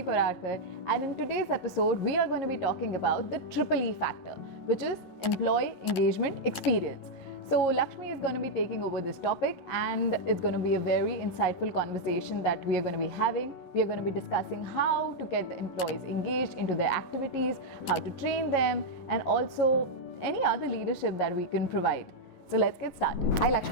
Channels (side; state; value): right; late; 11 ms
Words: Paradkar, and in today's episode, we are going to be talking about the triple E factor, which is employee engagement experience. So Lakshmi is going to be taking over this topic, and it's going to be a very insightful conversation that we are going to be having. We are going to be discussing how to get the employees engaged into their activities, how to train them, and also any other leadership that we can provide. So let's get started. Hi